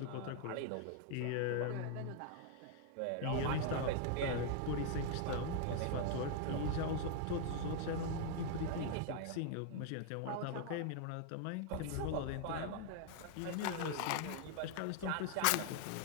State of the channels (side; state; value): both; different; correlation 0.00